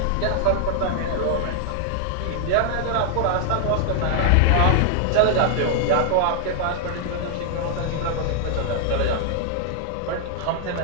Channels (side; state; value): both; different; correlation 0.00